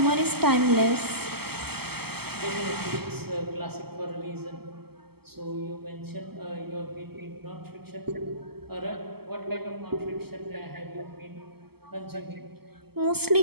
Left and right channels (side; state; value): left; late; 0.96 ms